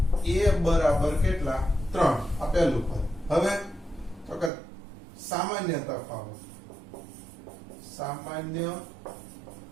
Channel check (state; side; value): drops out; left; at 4.5 s